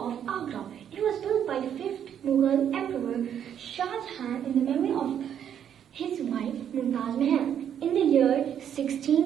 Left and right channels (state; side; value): quieter; left; 9.2 dB